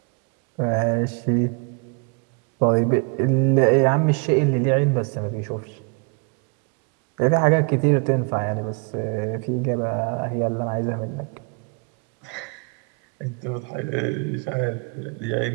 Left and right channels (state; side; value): quieter; left; 34.4 dB